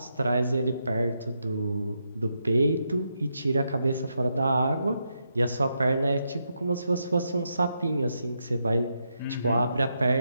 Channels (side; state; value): both; inverted; correlation -0.82